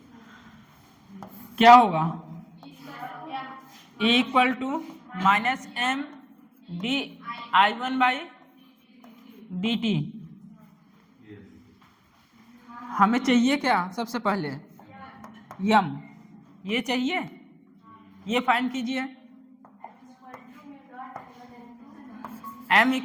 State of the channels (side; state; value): both; identical; correlation 1.00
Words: क्या होगा? Equal to -m di1/dt। हमें चाहिए क्या सबसे पहले? यम, ये चाहिए। ये फाइंड कीजिए। m